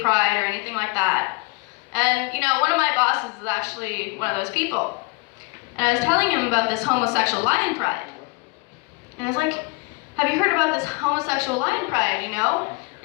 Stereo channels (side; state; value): right; quieter; 28.4 dB